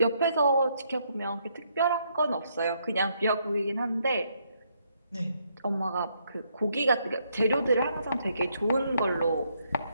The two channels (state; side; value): inverted; both; correlation -0.73